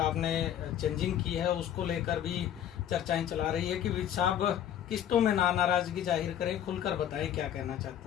चेंजिंग की है, उसको लेकर भी चर्चाएं चला रही है कि विज साहब किस्तों में नाराजगी जाहिर करें, खुलकर बताएं क्या कहना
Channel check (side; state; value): right; quieter; 10.3 dB